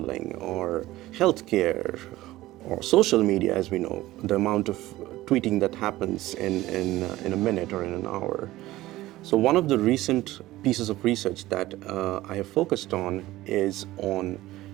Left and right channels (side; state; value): left; quieter; 16.7 dB